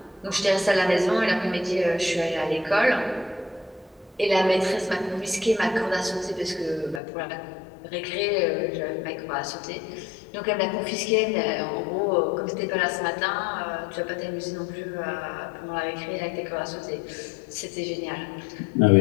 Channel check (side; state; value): right; drops out; at 7.0 s